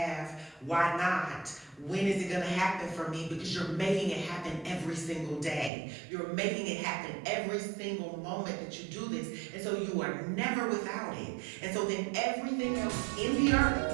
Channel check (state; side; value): drops out; left; at 5.7 s